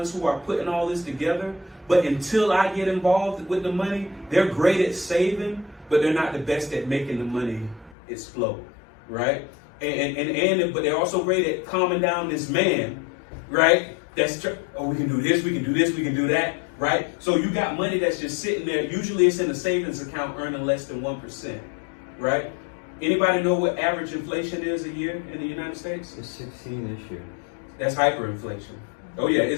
who are putting all this together. But until I get involved with the money, they're great at saving, but they're not the best at making the money explode, right? But they're also great at calming down this man, right? We can do this, we can do this, we can do that, right? So you got money that's just sitting there. Usually it's in a savings account earning less than 1%, right? Anybody know what average inflation is a year in the United States? It's 16 this year. That's hyperinflation. Oh yeah,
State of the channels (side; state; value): right; drops out; at 8.0 s